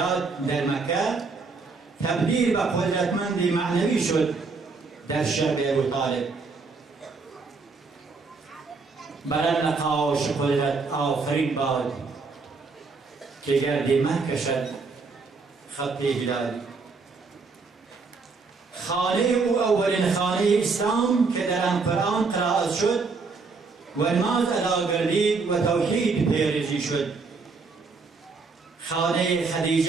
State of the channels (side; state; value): left; quieter; 4.4 dB